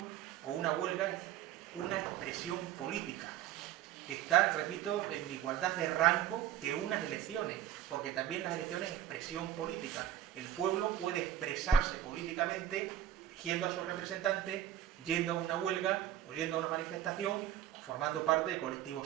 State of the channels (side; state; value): left; quieter; 11.2 dB